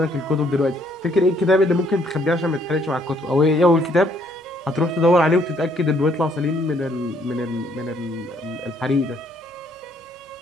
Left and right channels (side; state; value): both; normal; correlation 0.67